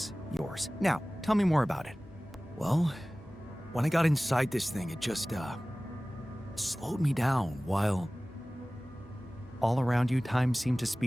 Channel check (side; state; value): both; normal; correlation 0.98